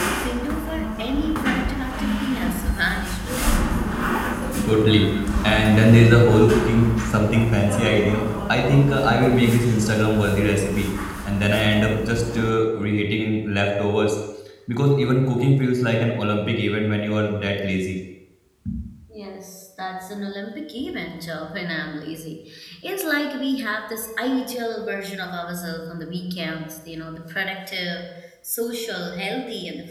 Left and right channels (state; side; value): identical; both; correlation 1.00